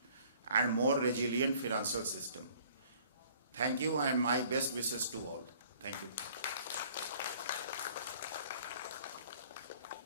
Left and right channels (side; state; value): both; inverted; correlation -0.55